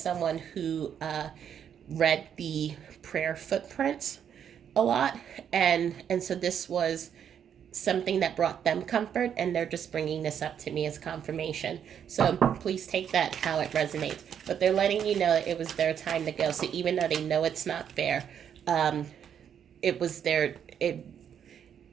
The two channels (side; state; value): left; quieter; 8.6 dB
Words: who read the prayer footprints a lot, and so this was something that brought them comfort, and they're just bringing this up to me as confirmation. So please take that how it resonates. But they're letting you know that it was their time to go. So even though they know it's not fair, um, it was their